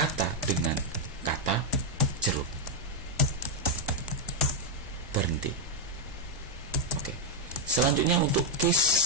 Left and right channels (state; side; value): normal; both; correlation 0.00